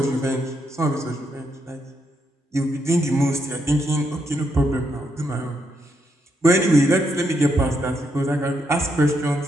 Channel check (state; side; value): normal; both; correlation 0.79